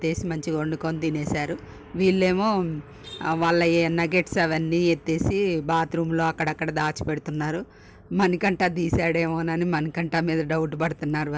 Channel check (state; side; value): identical; both; correlation 1.00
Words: మంచిగా వండుకొని తినేశారు. వీళ్ళేమో వాళ్ళ నగెట్స్ అవన్నీ ఎత్తేసి బాత్రూంలో అక్కడక్కడ దాచిపెడుతున్నారు. మణికంఠ తీసాడేమోనని మణికంఠ మీద డౌట్ పడుతున్నారు